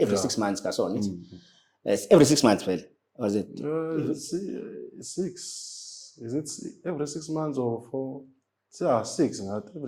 6 months ka so ngithi. Every 6 months, well, was it? 6. Is it every 6 months or 4? Yeah, 6. Not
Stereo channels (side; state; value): both; identical; correlation 1.00